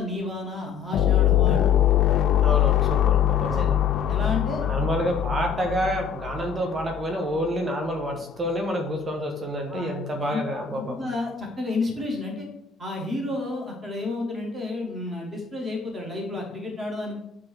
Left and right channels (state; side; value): quieter; right; 6.0 dB